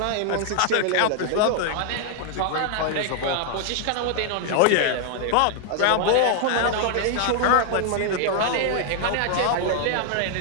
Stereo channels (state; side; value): different; both; correlation 0.00